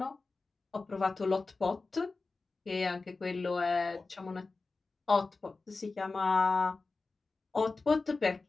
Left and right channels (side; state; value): right; quieter; 3.8 dB